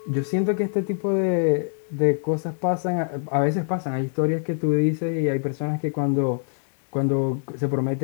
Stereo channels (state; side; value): silent; right; digital silence